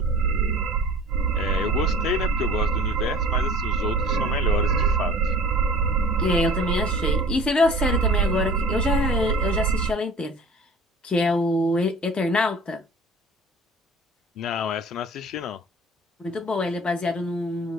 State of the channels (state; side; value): normal; both; correlation 0.44